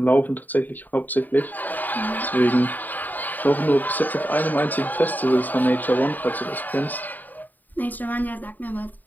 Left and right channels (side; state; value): right; late; 0.086 ms